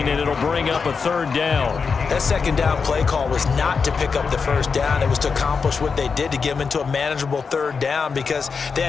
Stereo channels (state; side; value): quieter; right; 5.3 dB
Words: and it'll bring up a 3rd down. That 2nd down play call was not to pick up the 1st down. It was to accomplish what they did to get them into a manageable 3rd down because they